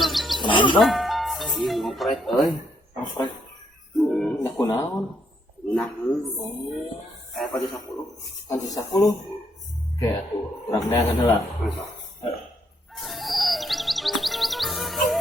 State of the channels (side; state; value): both; normal; correlation 0.74